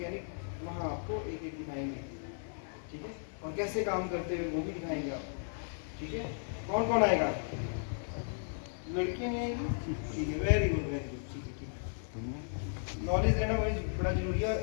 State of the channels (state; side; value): silent; right; 54 dB below the other